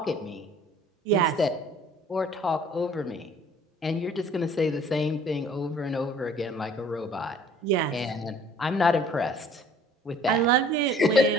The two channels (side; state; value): both; normal; correlation 0.53